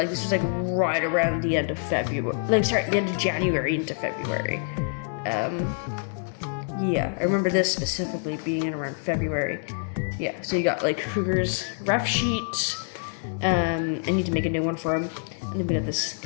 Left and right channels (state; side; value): silent; right; 61 dB below the other